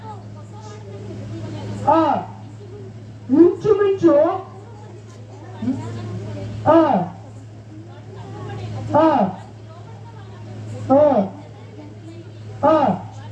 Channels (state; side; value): identical; both; correlation 1.00